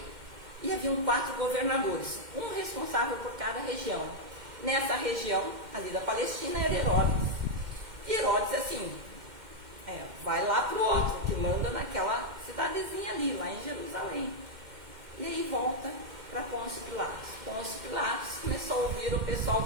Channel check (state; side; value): late; left; 2.1 ms